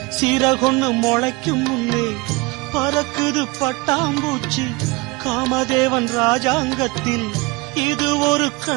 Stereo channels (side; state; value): left; quieter; 24.6 dB